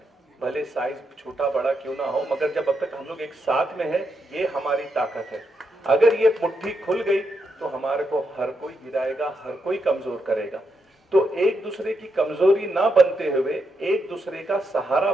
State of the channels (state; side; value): normal; both; correlation 0.82